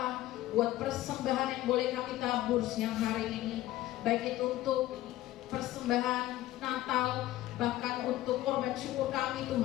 buat persembahan yang boleh kami tabur siang hari ini, baik itu untuk persembahan Natal, bahkan untuk korban syukur kami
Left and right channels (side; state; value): right; quieter; 15.3 dB